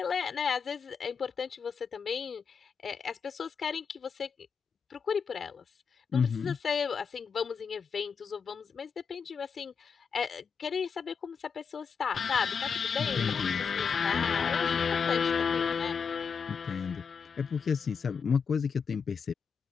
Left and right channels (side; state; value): right; quieter; 6.1 dB